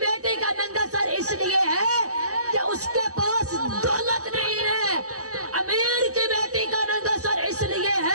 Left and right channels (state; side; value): late; left; 0.66 ms